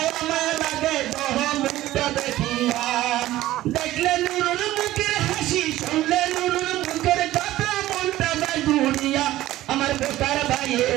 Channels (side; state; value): left; quieter; 15.3 dB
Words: মায়া লাগে তো মুখটা দেখিয়া দেখলে নুরুর মুখের হাসি শুনলে নুরুর মুখের কথা মনটা যায় দুনিয়া আমার বেকার